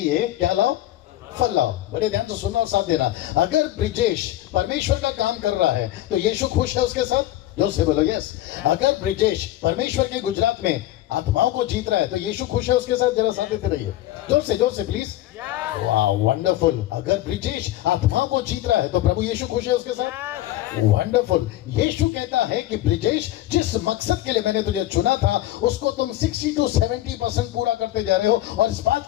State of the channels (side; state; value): right; quieter; 14.5 dB